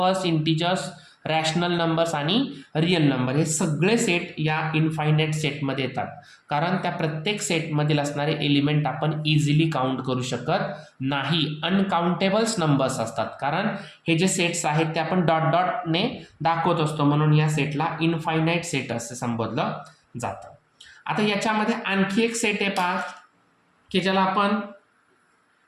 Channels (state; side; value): identical; both; correlation 1.00